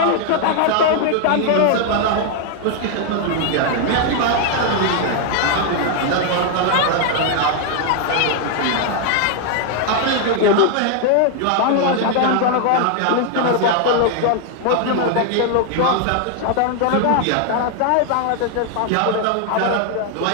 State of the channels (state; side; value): different; both; correlation 0.00